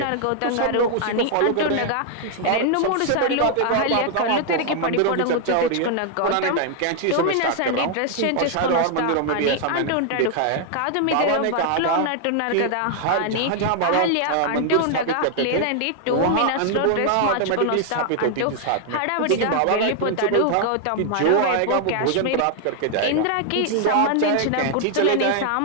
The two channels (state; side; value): different; both; correlation 0.00